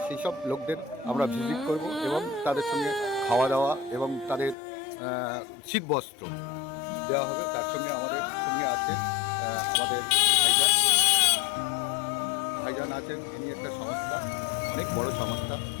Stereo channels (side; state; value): right; drops out; at 4.5 s